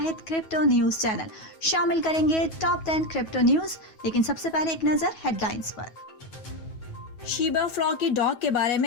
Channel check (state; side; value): late; right; 9.3 ms